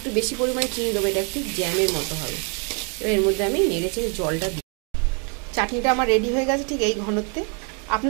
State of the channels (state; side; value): quieter; left; 36.6 dB